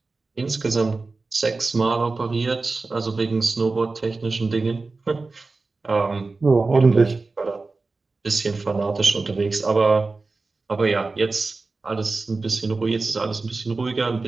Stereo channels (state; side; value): quieter; left; 3.8 dB